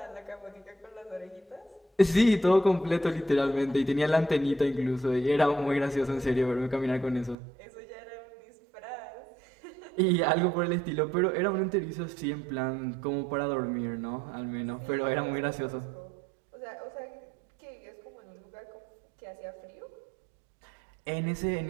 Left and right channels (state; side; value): drops out; left; at 7.4 s